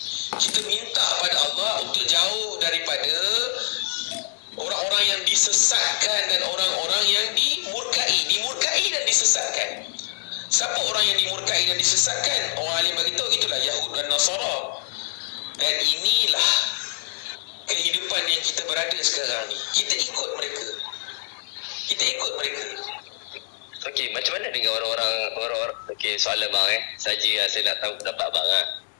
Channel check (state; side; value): silent; right; 62 dB below the other